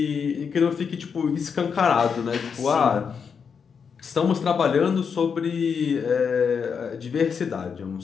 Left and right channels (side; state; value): right; quieter; 6.3 dB